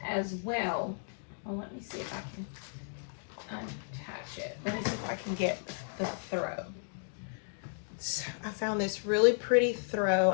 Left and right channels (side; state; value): right; silent; digital silence